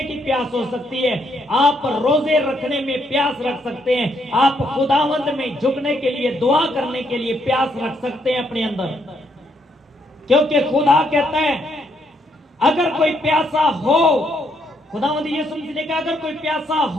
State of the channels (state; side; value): normal; both; correlation 0.74